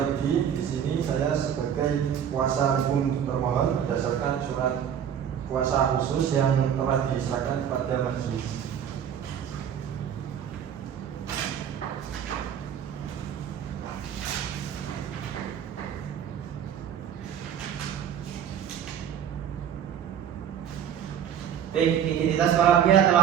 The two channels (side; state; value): left; quieter; 8.9 dB